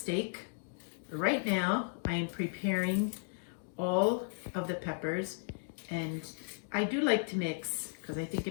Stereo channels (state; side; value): silent; right; digital silence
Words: Right now, I am preparing all of the peppers, and I do like to mix because I think